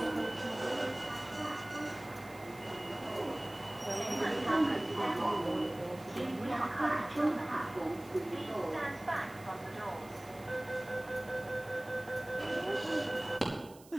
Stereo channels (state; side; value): noise; right; hiss, 22 dB below the sound